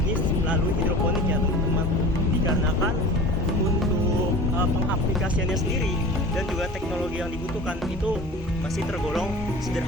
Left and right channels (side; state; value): both; normal; correlation 0.38